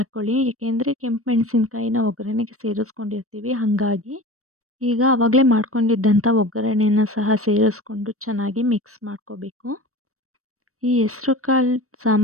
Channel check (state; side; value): late; left; 0.64 ms